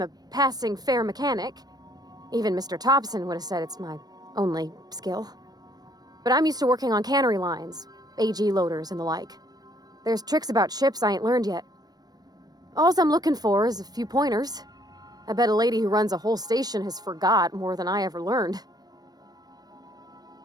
a passing fair mechanic. Even Mr. Thompson would have said it's my only skill. But I'm used to working on cannery lines, AG loaders and the like. There's tricks about ships I ain't learned yet. All I'm looking for is a few pointers. I bet a lady who runs a whole station has forgot more than I ever learned.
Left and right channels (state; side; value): late; left; 0.19 ms